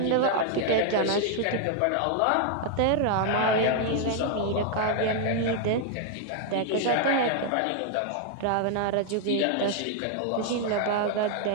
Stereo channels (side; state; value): both; different; correlation 0.00